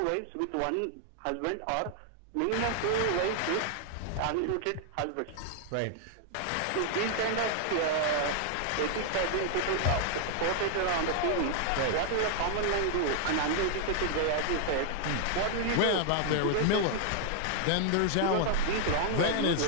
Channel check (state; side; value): different; both; correlation 0.00